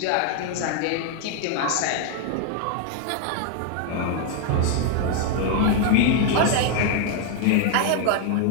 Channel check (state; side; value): different; both; correlation 0.00